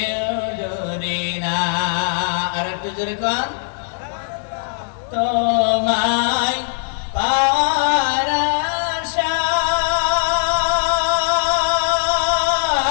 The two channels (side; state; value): right; silent; 62 dB below the other